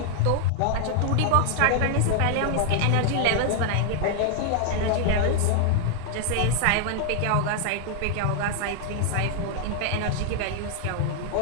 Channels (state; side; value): different; both; correlation 0.00